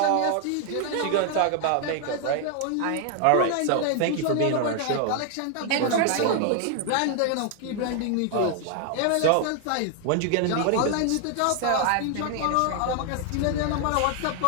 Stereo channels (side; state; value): both; different; correlation 0.00